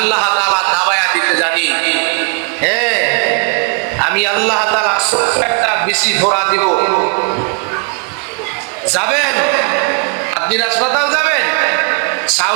তাআলা দাবায়া দিতে জানি। হ্যাঁ, আমি আল্লাহ তাআলা একটা বেশি ধরা দিব। যাবেন আপনি, হাসপাতাল যাবেন,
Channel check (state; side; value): quieter; left; 36.2 dB